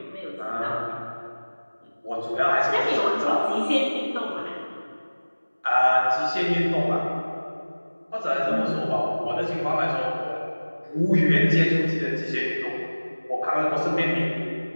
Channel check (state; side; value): inverted; both; correlation -1.00